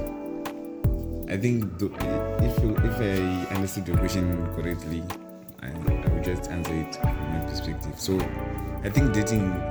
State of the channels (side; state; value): both; identical; correlation 1.00